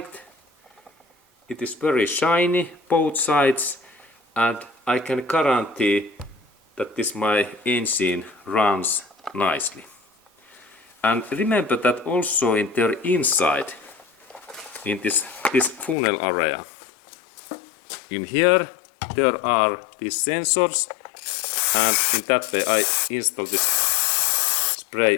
It is very shiny both sides, and I can guarantee that this my engine runs nicely. And remember that also in their inside, in this funnel area, in here there are these sensors, and in that way I install this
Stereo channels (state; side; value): drops out; right; at 16.0 s